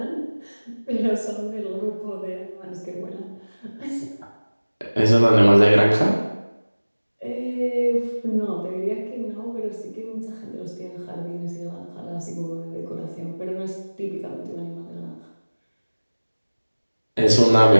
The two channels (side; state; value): both; inverted; correlation -1.00